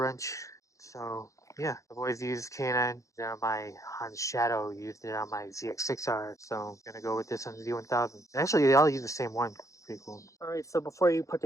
So yeah, I've always used K&N on my Honda Shadow, used it on my ZX6R, so I'm gonna go with this on the Z1000. Actually, they all use the same one. Pretty cool. Alright, so before you put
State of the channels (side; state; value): right; late; 0.15 ms